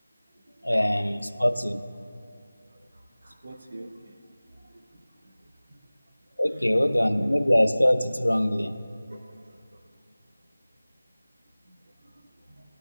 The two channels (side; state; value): both; inverted; correlation -0.99